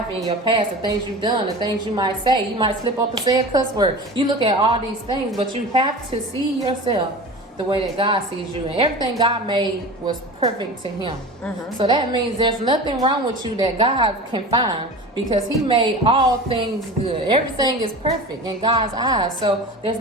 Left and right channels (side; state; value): both; normal; correlation 0.33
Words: in your past, the things you've done, the things you might say. You might slip up and say a cuss word. You look at all these things, but you have to see yourself the way that God sees you. And everything God made was perfect to him. So that means there's nothing wrong with you that God can find, because he made all things good. Everything is perfect in God's eyes. So there's